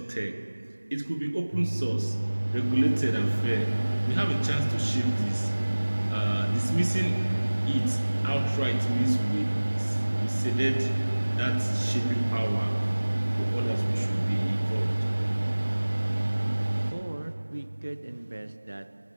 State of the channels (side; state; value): both; inverted; correlation -1.00